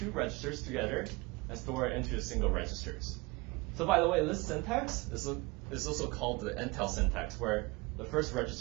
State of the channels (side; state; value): left; quieter; 24.7 dB